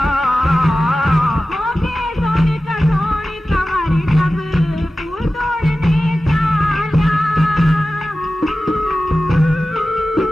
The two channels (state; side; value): normal; both; correlation 0.95